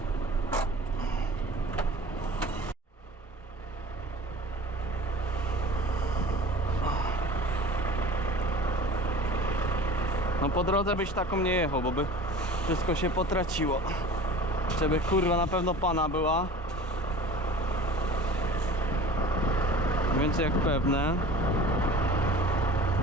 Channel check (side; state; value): both; normal; correlation 0.41